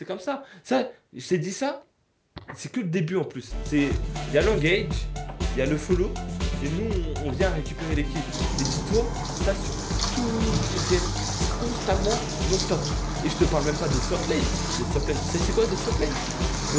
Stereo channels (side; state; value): both; identical; correlation 1.00